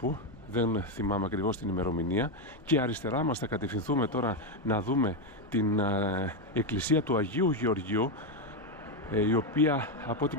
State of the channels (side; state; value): both; normal; correlation 0.06